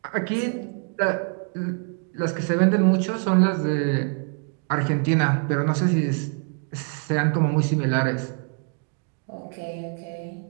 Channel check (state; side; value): quieter; left; 39.2 dB